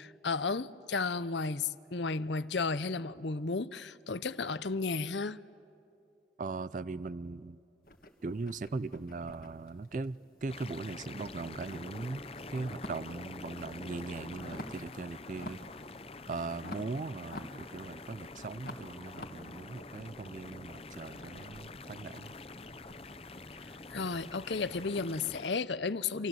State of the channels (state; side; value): normal; both; correlation 0.30